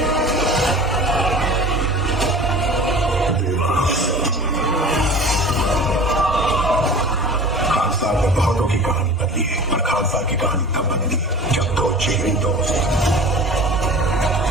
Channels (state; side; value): normal; both; correlation 0.40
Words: खानसार ने बहुतों की कहानी बदली है, पर खानसार की कहानी तब बदली जब दो जिगरी दोस्त